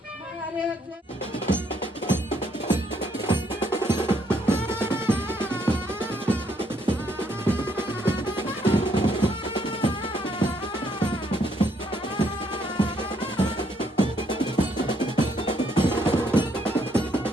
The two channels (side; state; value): both; normal; correlation 0.71